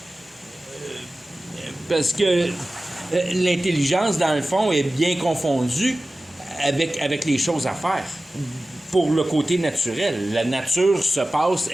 Parce que l'intelligence, dans le fond, est bien confondue avec les choses à faire. Pour le côté naturel. La nature se passe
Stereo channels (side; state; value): both; normal; correlation 0.96